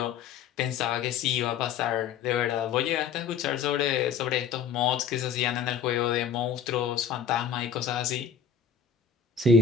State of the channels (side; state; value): right; quieter; 7.0 dB